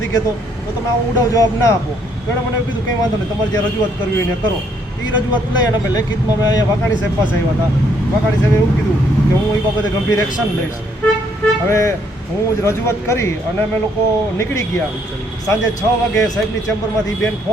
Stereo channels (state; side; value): normal; both; correlation 0.69